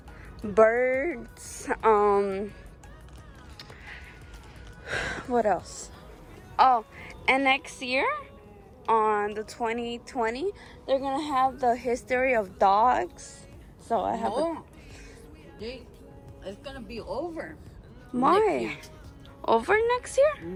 birds, what else? Oh, and next year on the 2020 they're gonna have the history of dogs. So I have it's gonna be over. Why? Over next year?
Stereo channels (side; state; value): both; identical; correlation 1.00